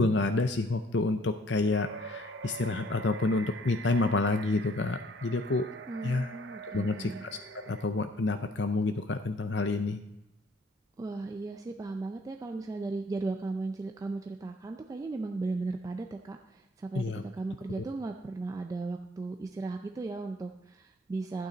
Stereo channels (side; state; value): both; normal; correlation 0.60